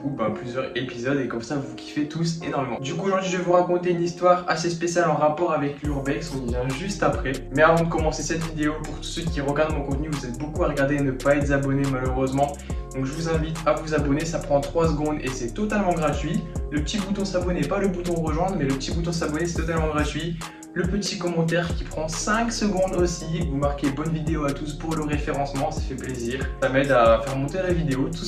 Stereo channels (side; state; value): both; identical; correlation 1.00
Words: plusieurs épisodes, et comme ça vous kiffez tous énormément. Du coup aujourd'hui je vais vous raconter une histoire assez spéciale en rapport avec l'urbex, on y vient juste après. Mais avant de commencer cette vidéo, pour tous ceux qui regardent mon contenu, vous êtes beaucoup à regarder et ne pas être abonnés malheureusement. Donc je vous invite à vous abonner, ça prend 3 secondes et c'est totalement gratuit. Le petit bouton s'abonner, pas le bouton rejoindre, mais le petit bouton s'abonner, c'est totalement gratuit. Le petit commentaire qui prend 5 secondes aussi, vous marquez bonne vidéo à tous pour le référencement, ça fait plaisir. Ça m'aide à faire monter la vidéo tout